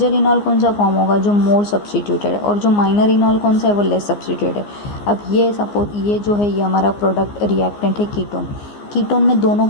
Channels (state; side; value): late; right; 14 ms